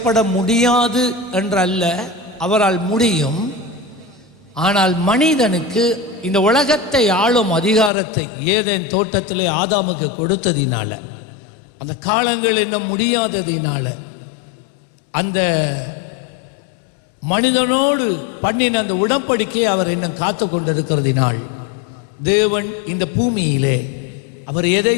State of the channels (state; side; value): drops out; right; at 7.9 s